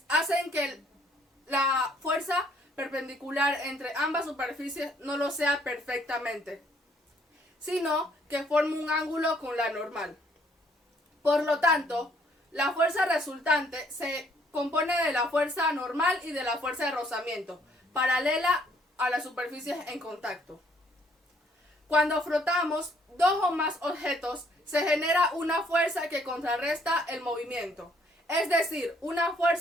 hacen que la fuerza perpendicular entre ambas superficies no lo sea perfectamente, sino que forme un ángulo con la normal. Por lo tanto, la fuerza resultante se compone de la fuerza normal y de la fuerza de rozamiento, paralela a las superficies en contacto. Cuando frotamos dos o más objetos, se genera una fuerza que contrarresta el movimiento. Es decir, una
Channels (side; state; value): both; normal; correlation 0.65